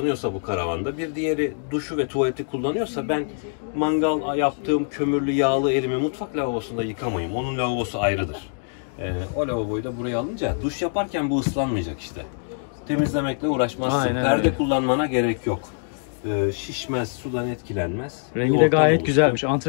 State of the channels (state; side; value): silent; right; digital silence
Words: bu karavanda, bir diğeri duşu ve tuvaleti kullanıyorsa ben mangal yaptığım kömürlü yağlı elimi mutfak lavabosunda yıkamayayım. Onun lavabosu ayrıdır. O lavaboyu da buraya alınca duş yaparken bu ıslanmayacak işte. Temizlemekle uğraşmazsın. Aynen Perde öyle. kullanmana gerek yok. Şişmez, sudan etkilenmez. Rengi de gayet güzelmiş.